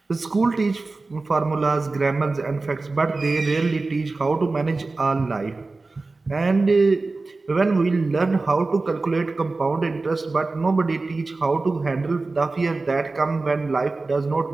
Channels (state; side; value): quieter; left; 3.6 dB